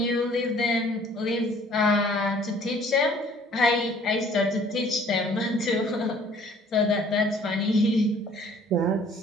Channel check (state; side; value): normal; both; correlation 0.56